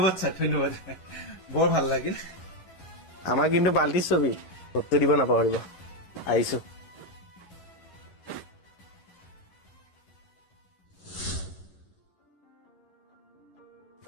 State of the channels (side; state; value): right; late; 11 ms